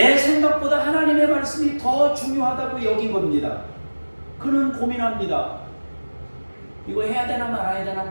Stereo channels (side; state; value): both; inverted; correlation -1.00